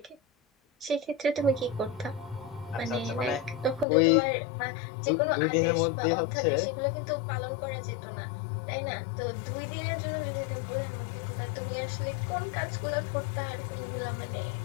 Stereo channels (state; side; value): drops out; right; at 3.9 s